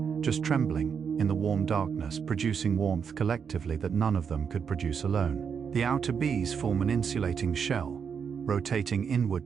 just trembling, in the warm darkness, producing warmth collectively that none of them could produce alone. The outer bees form an insulating shell, rotating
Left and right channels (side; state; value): left; quieter; 6.7 dB